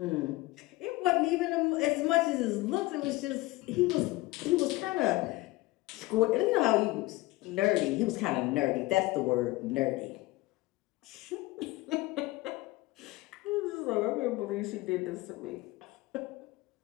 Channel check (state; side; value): quieter; right; 19.8 dB